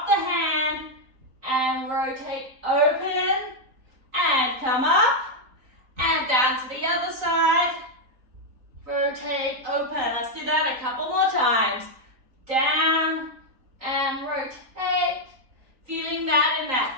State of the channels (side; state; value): left; late; 3.9 ms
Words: the hand, and rotate open, and come up, and down to the other side. Rotate, open. Let's do that a couple more times. Down and rotate. Feeling that in